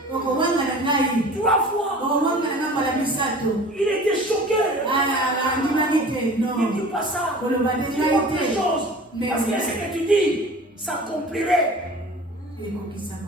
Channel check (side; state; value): both; normal; correlation 0.42